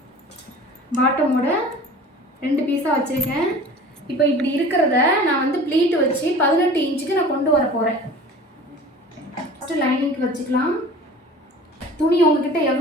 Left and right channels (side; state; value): both; normal; correlation 0.42